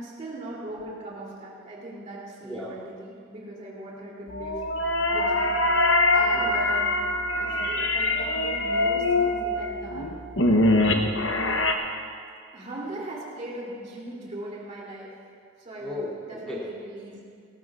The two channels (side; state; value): both; normal; correlation 0.00